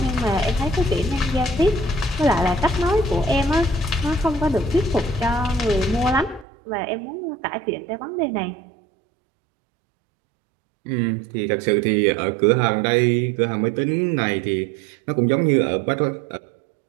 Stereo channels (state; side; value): drops out; left; at 6.5 s